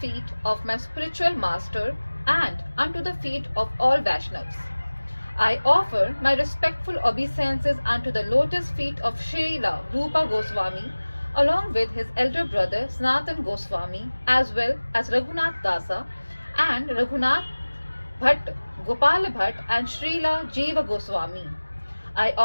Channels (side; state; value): both; inverted; correlation -1.00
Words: of my spiritual master and unto the feet of all Vaishnavas. I offer my respectful obeisances unto the lotus feet of Srila Rupa Goswami along with his elder brother Sanatan Goswami as well as Raghunath Dasa and Raghunath Bhatt, Gopal Bhatt and Srila Jiva Goswami. I